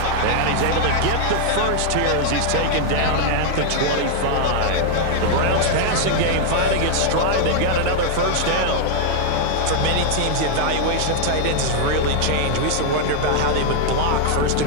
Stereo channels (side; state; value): both; different; correlation 0.00